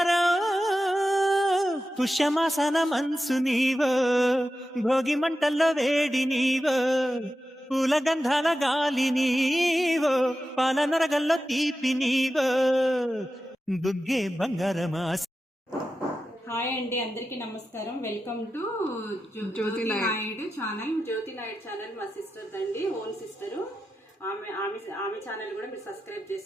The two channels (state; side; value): normal; both; correlation 0.91